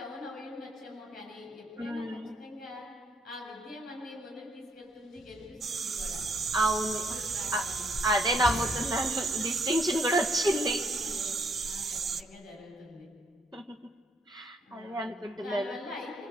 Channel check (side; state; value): both; normal; correlation 0.71